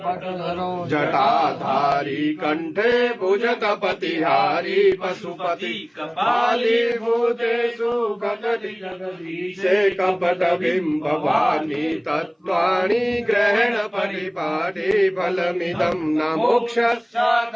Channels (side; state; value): both; identical; correlation 1.00